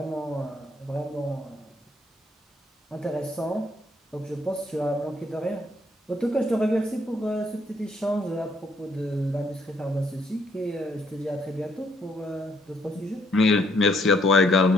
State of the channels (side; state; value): both; normal; correlation 0.68